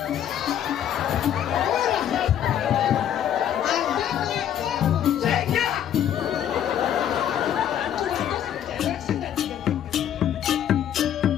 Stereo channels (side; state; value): right; quieter; 10.1 dB